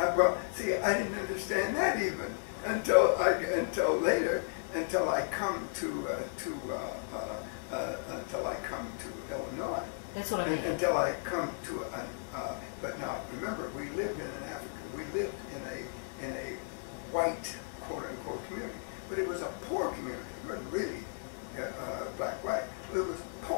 see, I didn't understand that even until later, until I come to Illinois. That's what I mean. Until I come to but now remember, we lived in a white, quote unquote, community, but it was a poor community. It wasn't really black-white. It was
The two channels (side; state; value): right; silent; digital silence